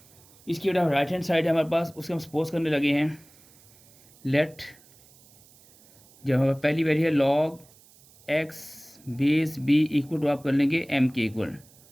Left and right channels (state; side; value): noise; right; hiss, 27 dB below the sound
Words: इसकी बेटा राइट हैंड साइड है हमारे पास, उसके हम सपोज करने लगे हैं लेट, जब हमारे पहली वैल्यू है log x base B equal to आप कर लेंगे एम के इक्वल,